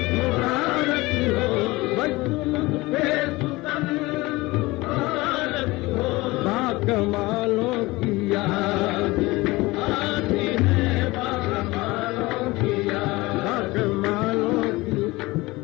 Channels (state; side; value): quieter; right; 21.3 dB